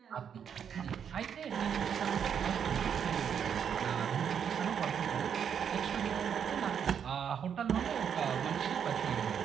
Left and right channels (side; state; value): left; quieter; 7.9 dB